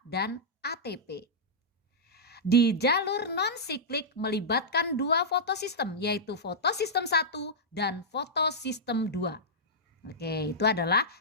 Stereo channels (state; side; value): normal; both; correlation -0.11